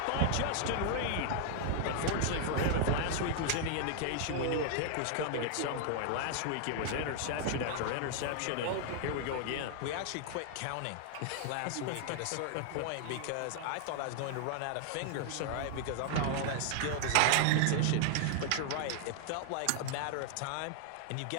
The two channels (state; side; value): different; both; correlation 0.00